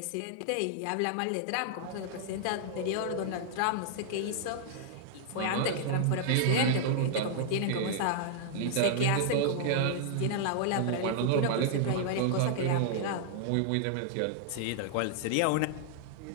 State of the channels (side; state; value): both; different; correlation -0.01